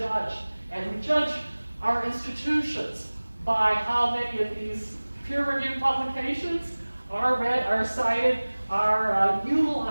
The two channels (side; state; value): both; inverted; correlation -1.00